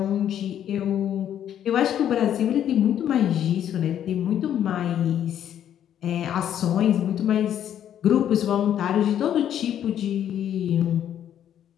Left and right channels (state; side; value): quieter; right; 10.2 dB